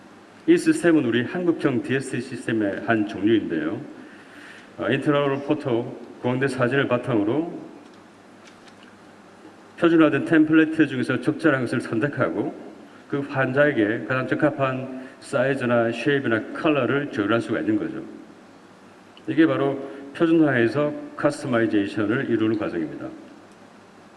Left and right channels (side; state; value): both; identical; correlation 1.00